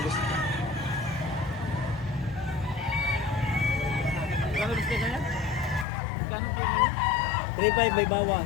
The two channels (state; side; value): drops out; right; at 5.9 s